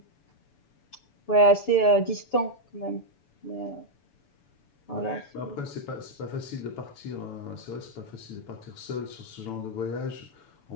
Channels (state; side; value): late; right; 7.0 ms